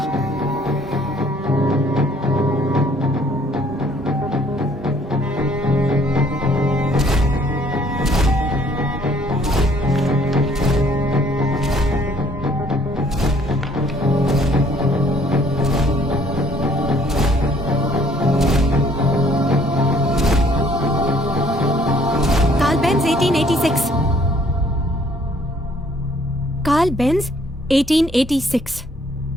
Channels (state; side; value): normal; both; correlation 0.61